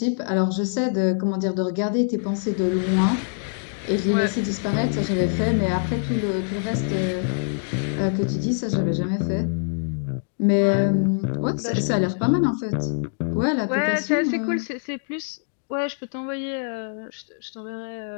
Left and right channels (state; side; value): silent; right; digital silence